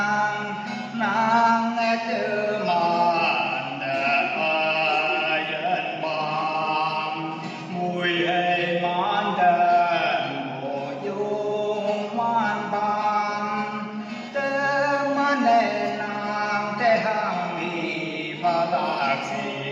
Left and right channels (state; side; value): identical; both; correlation 1.00